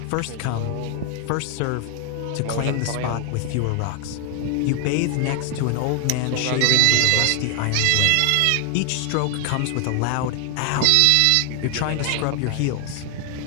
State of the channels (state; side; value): different; both; correlation 0.00